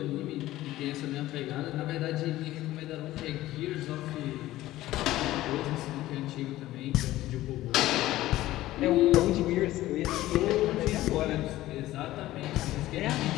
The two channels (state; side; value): quieter; right; 15.8 dB